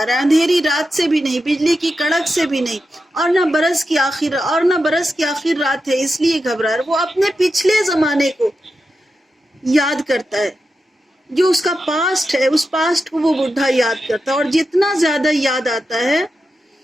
رہا ہے، اندھیری رات سے بھی نہیں، بجلی کی کڑک سے بھی نہیں، اور نہ برس کی آخر رات ہے اس لیے گھبرا رہا ہے. وہ اپنے پچھلے زمانے کو یاد کرتا ہے، جو اس کا پاسٹ ہے، اس پاسٹ کو وہ بڈھا یاد کرتا ہے، اور جتنا زیادہ یاد آتا ہے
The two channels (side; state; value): both; normal; correlation 0.89